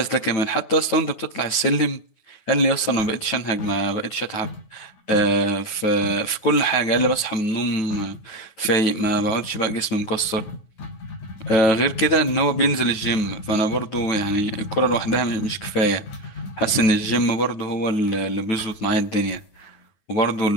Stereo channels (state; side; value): late; right; 9.1 ms